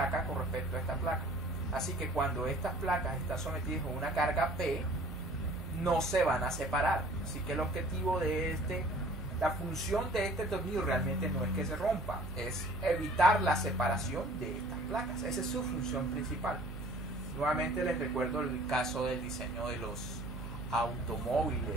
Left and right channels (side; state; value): right; noise; hum, 10 dB below the sound